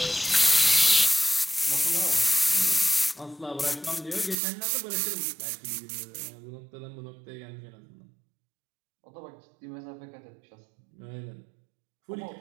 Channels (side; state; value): left; drops out; at 4.4 s